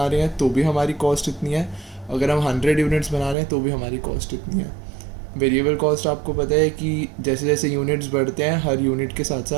रहे हैं तो भी हमारी कॉस्ट इतनी है, अगर हम 100 यूनिट्स बना रहे हैं तो भी हमारी कॉस्ट इतनी है। वेरिएबल कॉस्ट आपको पता है कि जैसे जैसे यूनिट्स बढ़ते हैं हर यूनिट के साथ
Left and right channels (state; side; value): drops out; left; at 3.4 s